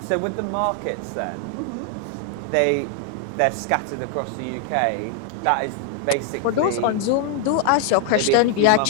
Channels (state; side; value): different; both; correlation 0.00